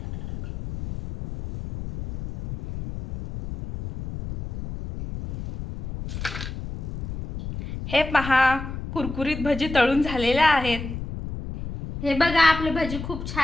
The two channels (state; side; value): noise; left; rumble, 9 dB below the sound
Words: हे पहा, कुरकुरीत भजी तळून झालेल्या आहेत। हे बघा, आपले भजी खूप